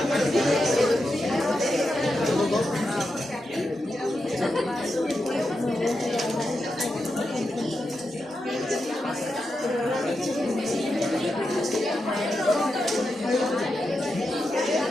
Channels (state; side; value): normal; both; correlation 0.87